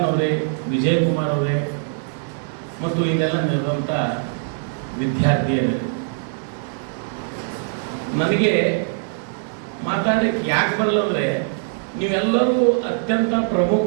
ಅವರೇ, ವಿಜಯಕುಮಾರ್ ಅವರೇ, ಮತ್ತು ಇಲ್ಲೆಲ್ಲ ನೆರೆದಂಥ ವಿದ್ಯಾರ್ಥಿಯರೇ, ನನಗೆ ಮಾತಾಡಲಿಕ್ಕೆ ಯಾಕೆ ಬರಲ್ಲ ಅಂದರೆ ನೀವೆಲ್ಲರೂ ಅತ್ಯಂತ ಪ್ರಮುಖ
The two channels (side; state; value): left; silent; digital silence